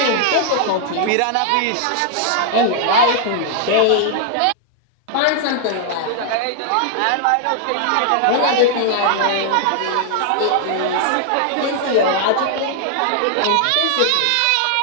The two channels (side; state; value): both; different; correlation -0.01